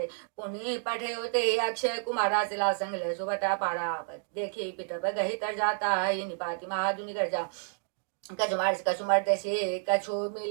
पुनि पठे होते अक्षय कुमारा सिला संग ले सुबटा पारा देखी पिट गही तर जाता है निपाति महादुनि कर जा कछु मारिस कछु मरते से कछु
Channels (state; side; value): silent; left; digital silence